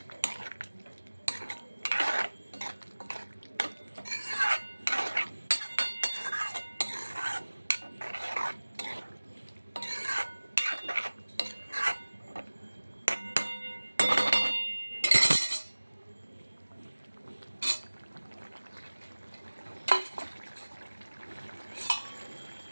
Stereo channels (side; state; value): both; inverted; correlation -1.00